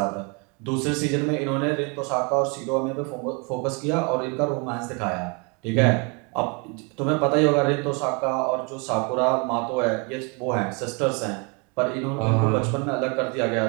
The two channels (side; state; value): left; quieter; 32.9 dB